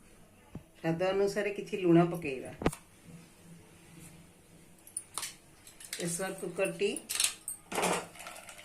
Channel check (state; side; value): identical; both; correlation 1.00